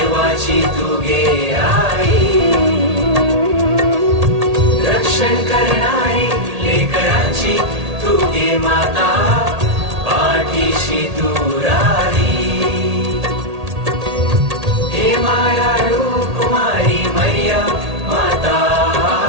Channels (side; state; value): left; late; 1.8 ms